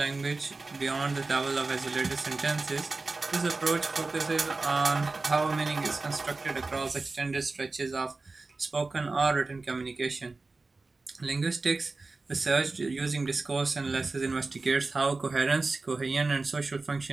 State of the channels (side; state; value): left; quieter; 3.6 dB